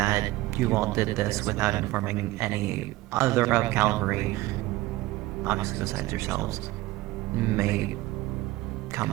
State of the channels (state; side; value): quieter; left; 18.1 dB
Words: you all did this without informing any other of cavalry, obviously besides yourselves, may come